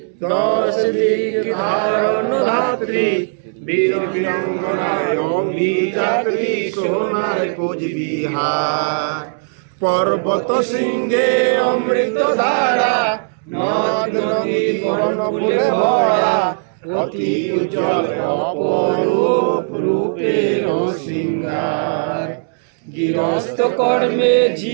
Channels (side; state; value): left; silent; 67 dB below the other